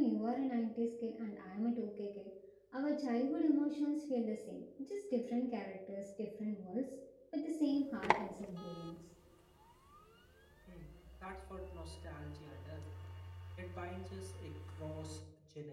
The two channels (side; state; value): both; identical; correlation 1.00